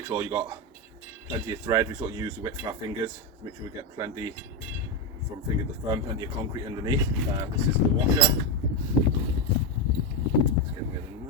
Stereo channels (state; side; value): normal; both; correlation 0.09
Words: sure you got plenty of thread. We sort of use the width of our fingers to make sure we get plenty from finger to thumb, plenty of concrete underneath. This is the washer. Let's get rid of